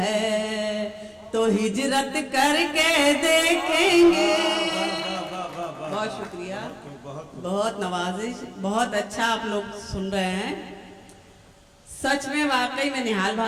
तो हिजरत करके देखेंगे। बहुत शुक्रिया, बहुत नवाजिश, बहुत अच्छा आप लोग सुन रहे हैं। सच में वाकई में निहाल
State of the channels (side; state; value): both; identical; correlation 1.00